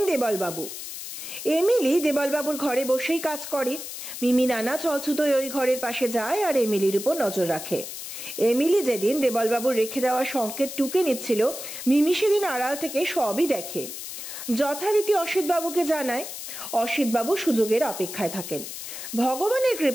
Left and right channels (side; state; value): left; noise; hiss, 9 dB below the sound